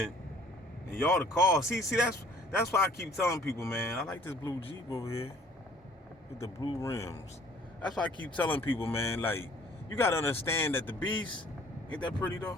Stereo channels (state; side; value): normal; both; correlation 0.55